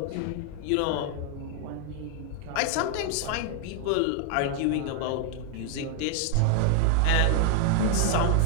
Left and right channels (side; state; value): both; different; correlation 0.00